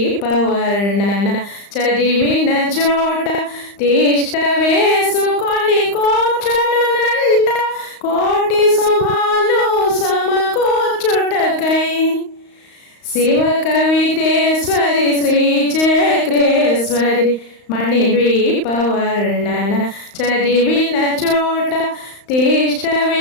వర్ణన చదివిన చోట తిష్ట వేసుకొని కూర్చునునంట కోటి శుభాలు సమకూర్చుటకై శివ కవితేశ్వరి శ్రీ చక్రేశ్వరి మణిద్వీప వర్ణన చదివిన చోట తిష్ట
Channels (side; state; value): right; late; 35 ms